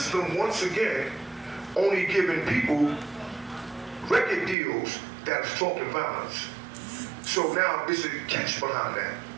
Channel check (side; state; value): left; drops out; at 4.5 s